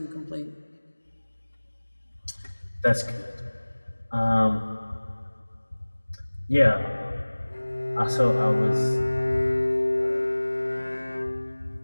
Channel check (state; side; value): inverted; both; correlation -1.00